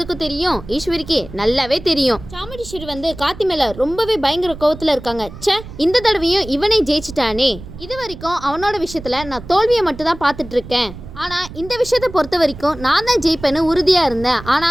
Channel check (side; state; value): right; noise; rumble, 15 dB below the sound